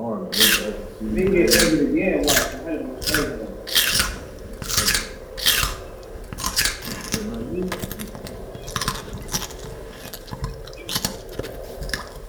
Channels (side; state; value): both; identical; correlation 1.00